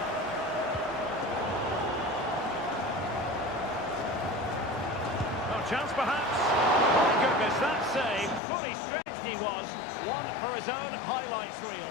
Oh, chance perhaps. My goodness, that save. Fully stretched he was. One for his own highlights reel.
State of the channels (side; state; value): right; drops out; at 8.4 s